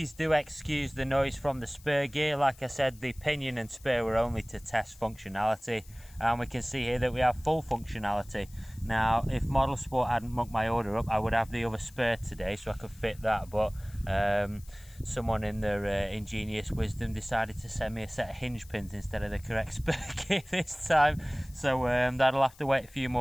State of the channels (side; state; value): left; noise; hiss, 24 dB below the sound